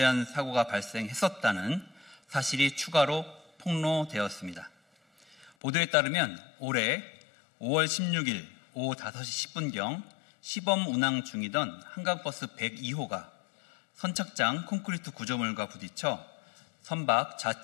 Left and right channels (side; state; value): right; drops out; at 5.5 s